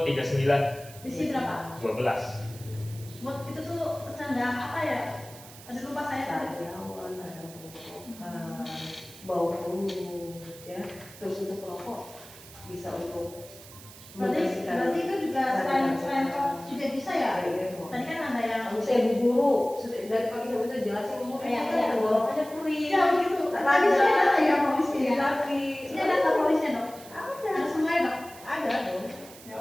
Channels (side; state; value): right; noise; hiss, 18 dB below the sound